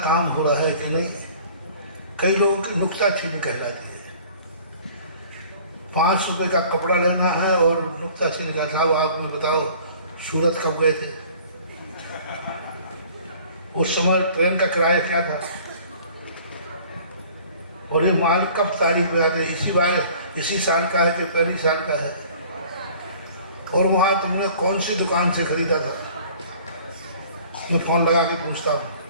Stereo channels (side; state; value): both; inverted; correlation -0.50